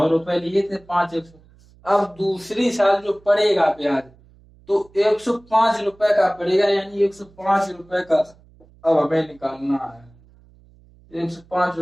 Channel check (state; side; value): noise; right; hum, 28 dB below the sound